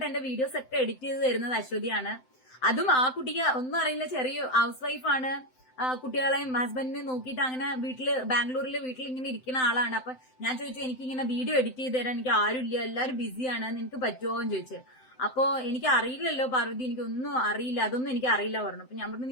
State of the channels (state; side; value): late; right; 7.8 ms